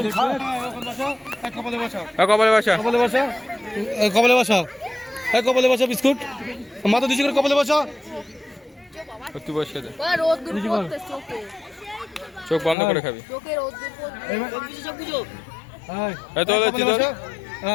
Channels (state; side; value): drops out; right; at 12.8 s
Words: কপালে বসা, কপালে বসা, কপালে বসা, কপালে বসা, কপালে বসা, বিস্কুট মাথা দিচ্ছি করে কপালে বসা, তুই বসে দে, চোখে চোখ বন্ধ করে খাবি।